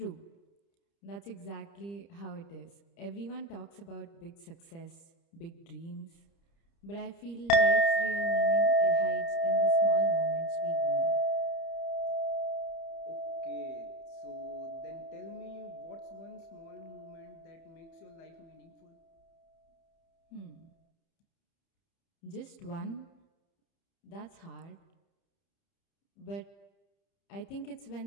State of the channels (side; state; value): right; late; 30 ms